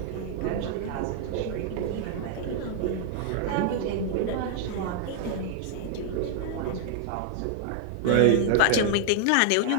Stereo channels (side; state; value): both; different; correlation 0.00